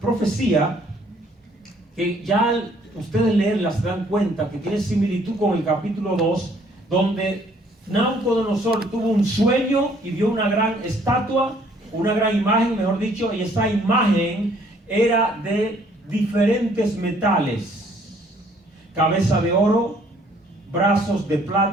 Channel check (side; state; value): both; normal; correlation 0.62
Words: que ya ustedes leerla se dan cuenta que tiene similitud con el capítulo 2, donde Nabucodonosor tuvo un sueño y vio una gran estatua, una gran imagen, mejor dicho, y esa imagen era de diferentes metales: cabeza de oro, brazos de